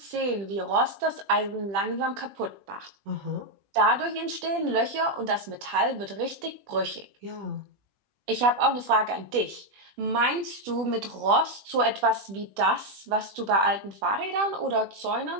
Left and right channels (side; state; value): left; late; 20 ms